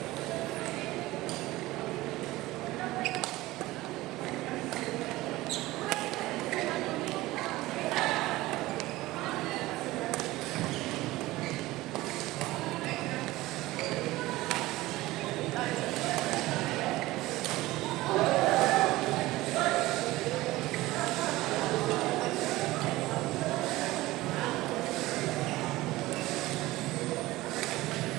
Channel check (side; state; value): left; quieter; 18.3 dB